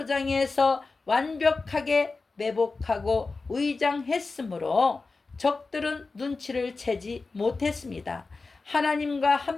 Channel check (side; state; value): right; quieter; 3.9 dB